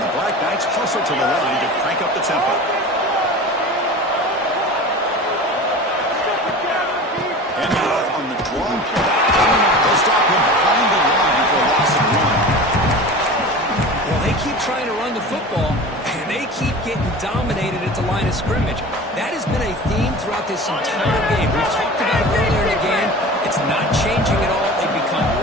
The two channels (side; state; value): both; normal; correlation 0.35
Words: Black Knights hustle to the line to crank up the tempo. They'll stop him behind the line for a loss of one. Well, they keep trying to run the football, and they keep getting dominated at the line of scrimmage. That has been a theme throughout this entire game. We've talked about it earlier in the game. It's not changing at all. They've become